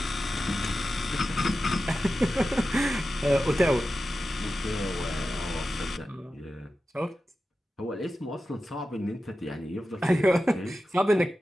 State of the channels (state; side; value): normal; both; correlation 0.93